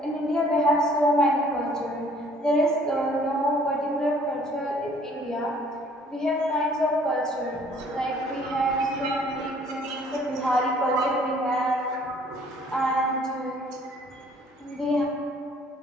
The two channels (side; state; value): both; normal; correlation 0.58